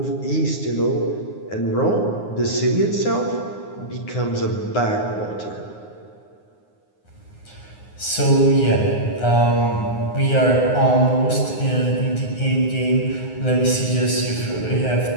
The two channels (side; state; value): right; late; 9.6 ms